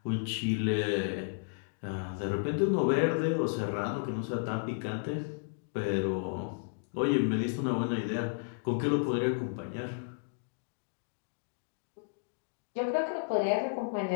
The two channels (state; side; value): silent; right; digital silence